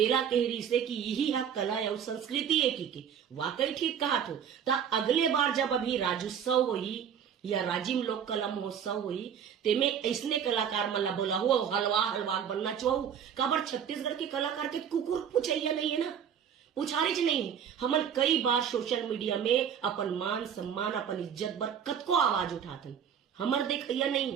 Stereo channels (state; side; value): quieter; left; 8.2 dB